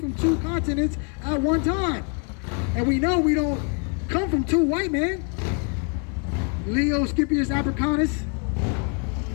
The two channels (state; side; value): quieter; right; 36.4 dB